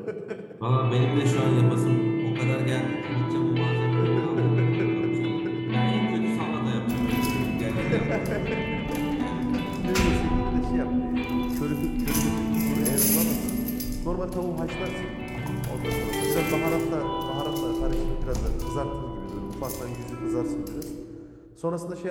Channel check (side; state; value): both; identical; correlation 1.00